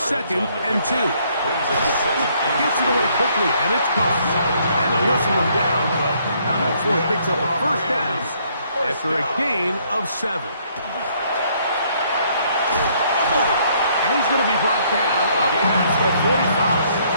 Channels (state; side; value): inverted; both; correlation -0.67